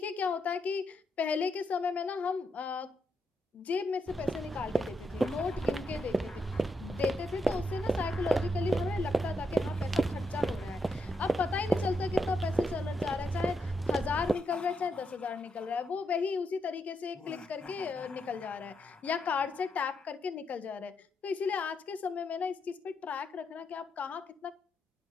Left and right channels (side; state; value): both; normal; correlation 0.81